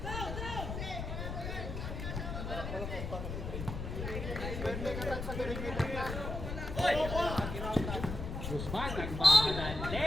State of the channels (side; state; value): left; noise; rumble, 5 dB below the sound